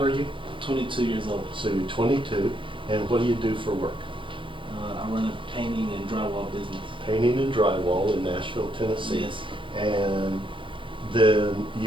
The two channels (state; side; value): late; left; 0.25 ms